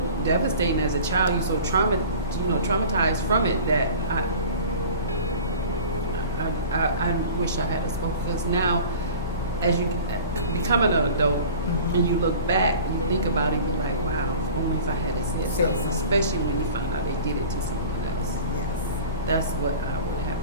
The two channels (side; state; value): both; inverted; correlation -0.40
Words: devastating as a child. You're so traumatized from it that I wish I had spoken. Because now, as you become an adult and you look back, you think about it, you're like, wow, if only if I had said something. Especially when you find out they did it to someone else. Yes. That's what I would have